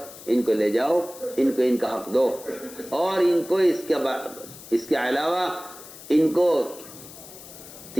ان کو لے جاؤ، ان کو ان کا حق دو، اور ان کو اس کے علاوہ ان کو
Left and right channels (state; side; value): noise; left; hiss, 17 dB below the sound